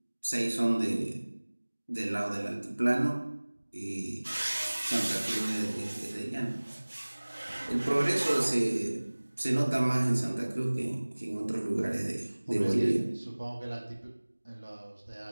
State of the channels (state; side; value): inverted; both; correlation -1.00